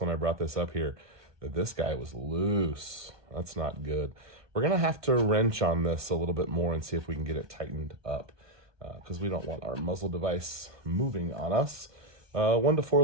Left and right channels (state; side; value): late; left; 1.6 ms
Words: when I brought this up here that this guy was loose. That's not good. We're going to have to wrench on this a little bit more and see if we can get it tightened up because we don't want our muzzle device moving on us. 1 to 4